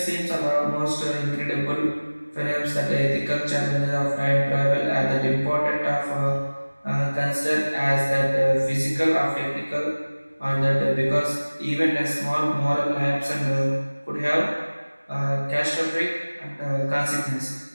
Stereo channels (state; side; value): inverted; both; correlation -1.00